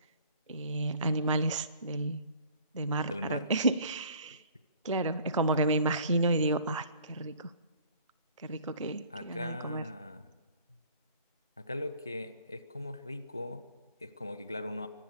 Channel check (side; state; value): both; inverted; correlation -0.53